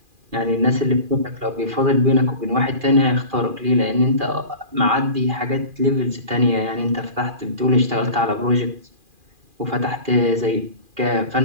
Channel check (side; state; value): left; late; 2.4 ms